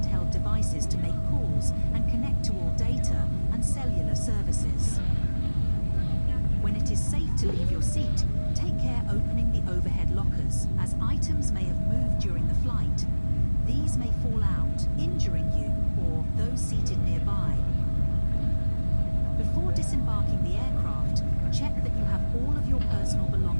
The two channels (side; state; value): both; inverted; correlation -1.00